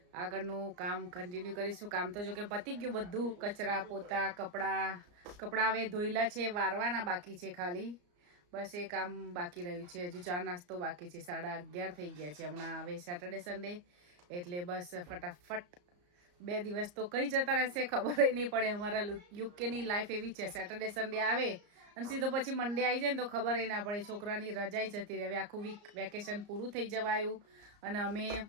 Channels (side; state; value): left; late; 34 ms